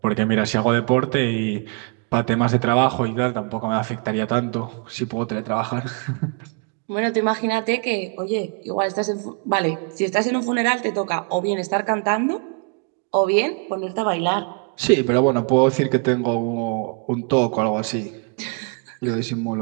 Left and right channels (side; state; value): left; quieter; 37.7 dB